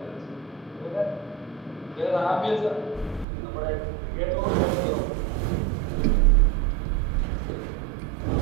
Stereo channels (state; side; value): drops out; left; at 3.2 s